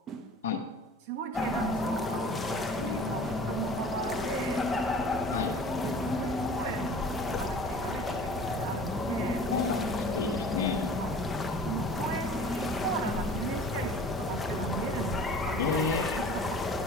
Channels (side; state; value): both; normal; correlation 0.44